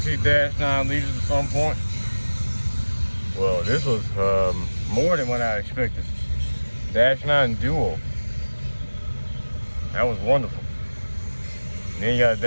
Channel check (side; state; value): both; inverted; correlation -1.00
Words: see Dash9 leaders at some point. Well, this was more than what I expected. Dash9 Duo. That was wonderful. And then you got